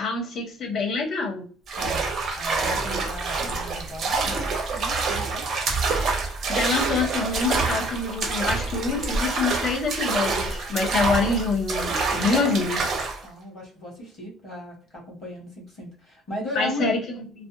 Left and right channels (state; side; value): normal; both; correlation 0.56